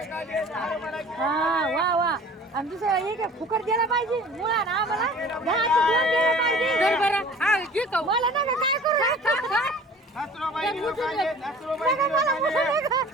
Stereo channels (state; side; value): normal; both; correlation 0.45